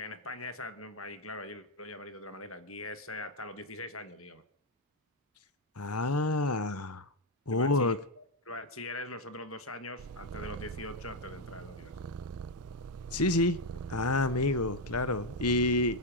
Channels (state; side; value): normal; both; correlation 0.04